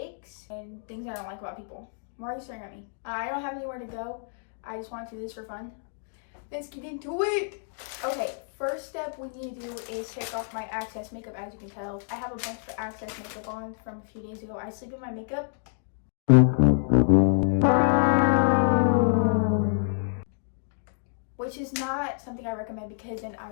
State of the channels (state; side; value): silent; right; digital silence